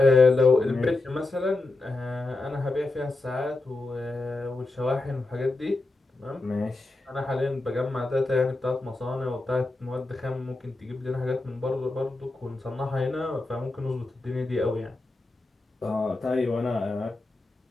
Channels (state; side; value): quieter; right; 3.1 dB